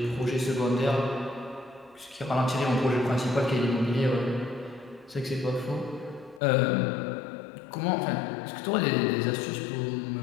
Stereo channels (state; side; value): drops out; right; at 6.4 s